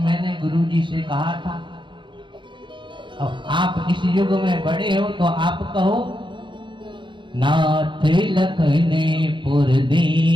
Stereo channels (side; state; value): left; late; 0.23 ms